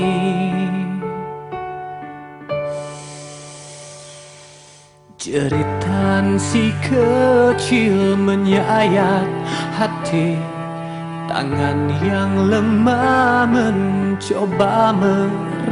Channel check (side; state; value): both; identical; correlation 1.00